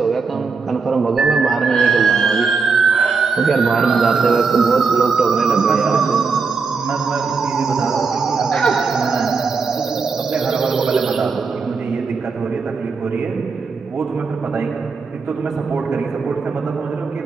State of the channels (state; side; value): quieter; left; 4.9 dB